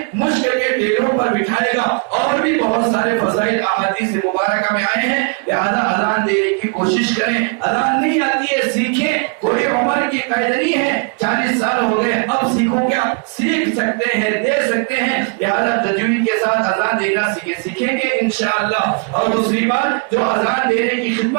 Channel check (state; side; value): quieter; left; 37.0 dB